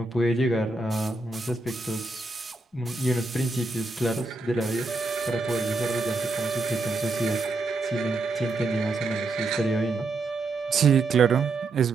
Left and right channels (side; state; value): left; quieter; 3.3 dB